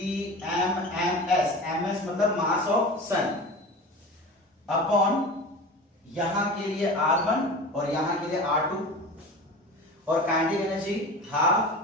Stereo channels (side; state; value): both; normal; correlation 0.33